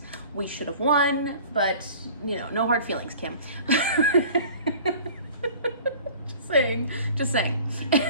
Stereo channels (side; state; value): both; inverted; correlation -0.45